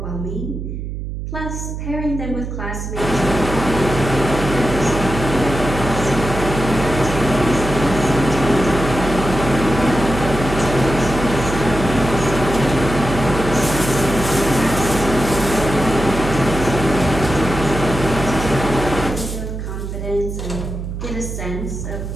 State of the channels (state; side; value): noise; right; hum, 6 dB below the sound